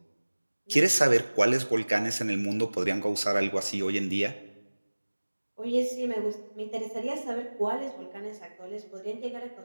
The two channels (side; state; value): both; inverted; correlation -1.00